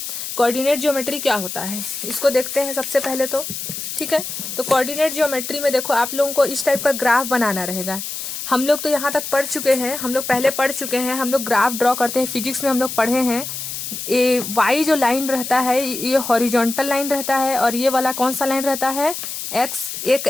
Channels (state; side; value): noise; left; hiss, 6 dB below the sound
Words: कोऑर्डिनेट जियोमेट्री क्या होता है इसको देखते हैं सबसे पहले तो, ठीक है। तो कोऑर्डिनेट जियोमेट्री में देखो आप लोगों को इस टाइप का ग्राफ बनाना रहेगा। हम लोग तो यहाँ तक पढ़ चुके हैं, हम लोग पहले पढ़ चुके हैं, हम लोग ग्राफ ड्रॉ करते हैं, फिजिक्स में हम लोग पढ़े हैं। ये वाई जो लाइन रहता है ये हॉरिजॉन्टल लाइन रहता है और ये वाला कौन सा लाइन रहता है एक्स। एक